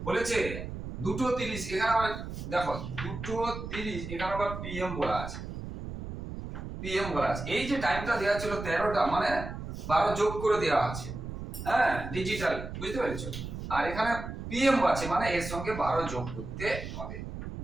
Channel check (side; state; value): right; noise; rumble, 8 dB below the sound